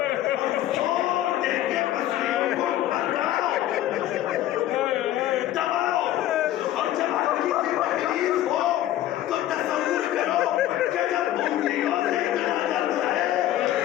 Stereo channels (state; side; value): quieter; right; 13.3 dB